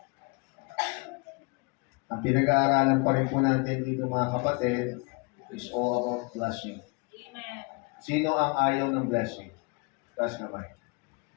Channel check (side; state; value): right; quieter; 29.6 dB